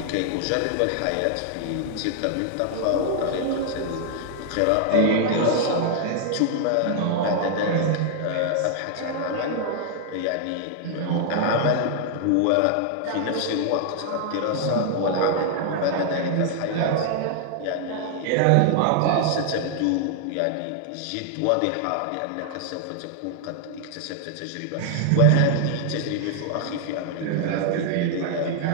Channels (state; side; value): different; both; correlation 0.00